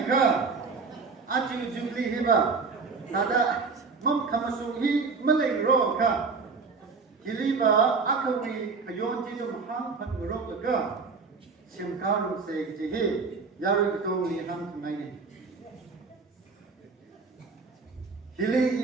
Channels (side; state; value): left; quieter; 4.6 dB